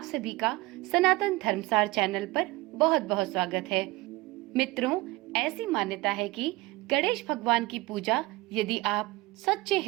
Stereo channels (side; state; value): left; quieter; 20.8 dB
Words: सभी का सनातन धर्मसार चैनल पर बहुत बहुत स्वागत है। मित्रों, ऐसी मान्यता है कि गणेश भगवान की पूजा यदि आप सच्चे